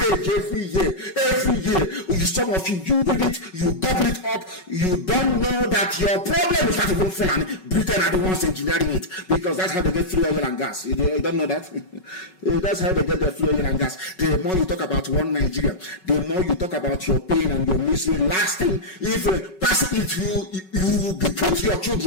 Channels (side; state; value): right; late; 5.4 ms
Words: every year. Every year, some of you read it, you double it up. You don't know that your problem is not even Fulani. Britain are the ones engineering it, because that's how they get free oil and gas. You don't know that? That's how they get their free oil and gas. The more you talk about one Nigeria, the more you talk about your pain and your misery. Last thing, if you will put your